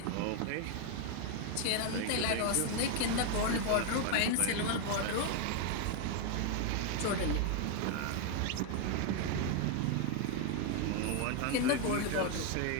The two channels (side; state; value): both; different; correlation 0.01